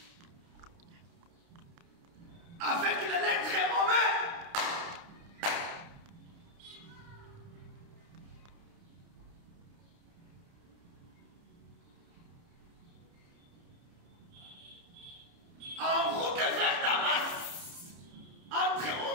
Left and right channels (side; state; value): left; late; 29 ms